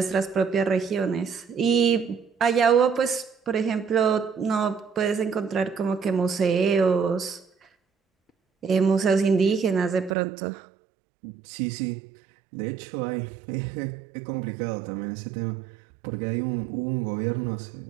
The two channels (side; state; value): left; drops out; at 10.2 s